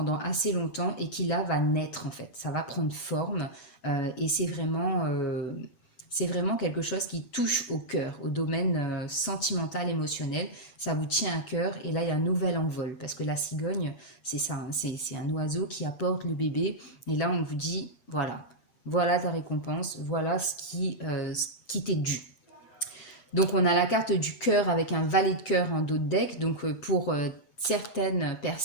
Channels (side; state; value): right; late; 7.3 ms